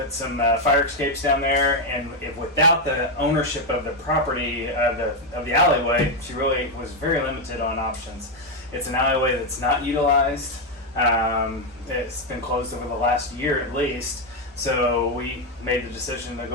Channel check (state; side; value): normal; both; correlation 0.04